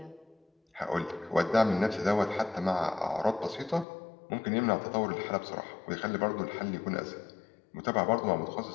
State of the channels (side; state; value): right; drops out; at 3.9 s